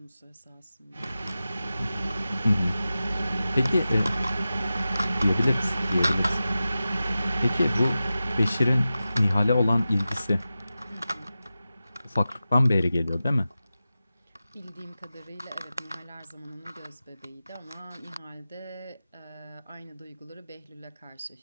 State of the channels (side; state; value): both; inverted; correlation -0.94